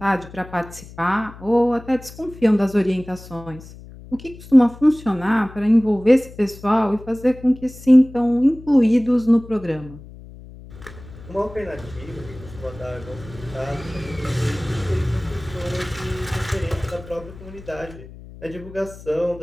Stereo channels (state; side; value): noise; left; hum, 17 dB below the sound